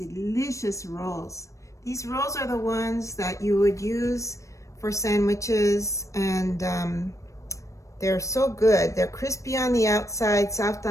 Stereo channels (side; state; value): right; late; 0.15 ms